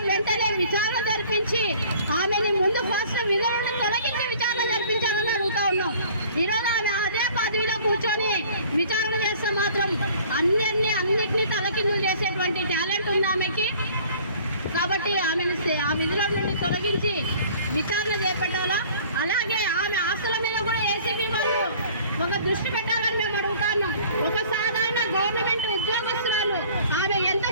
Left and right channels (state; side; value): inverted; both; correlation -0.51